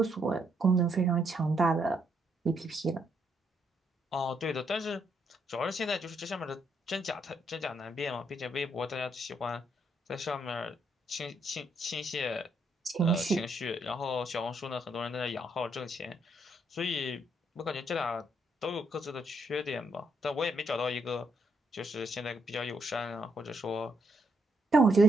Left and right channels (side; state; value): both; normal; correlation 0.75